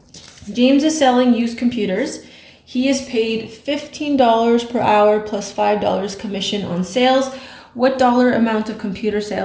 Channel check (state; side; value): identical; both; correlation 1.00